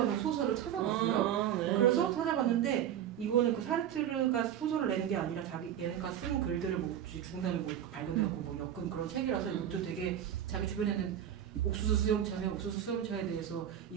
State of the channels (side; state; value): left; quieter; 10.2 dB